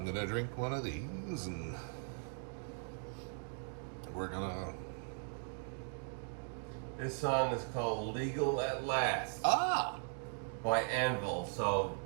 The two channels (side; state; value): left; silent; 52 dB below the other